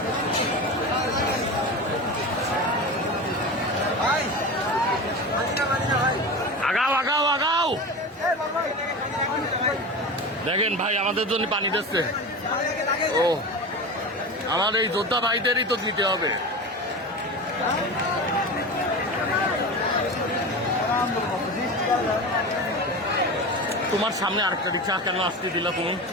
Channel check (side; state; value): both; normal; correlation 0.27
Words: আগাও আগাও আগাও, দেখেন ভাই আমাদের জন্য পানি দিচ্ছে। ও আমার এই যোদ্ধা ভাইদেরই তো দিতে হবে। তোমার সামনে আরেকটা রিক্সা কেন আসতে দিল তুমি?